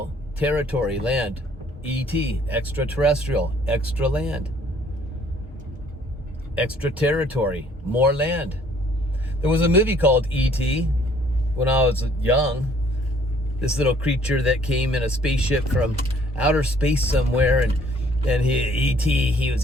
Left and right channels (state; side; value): normal; both; correlation 0.60